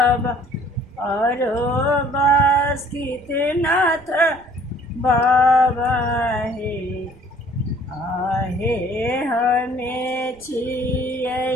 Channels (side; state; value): right; noise; rumble, 27 dB below the sound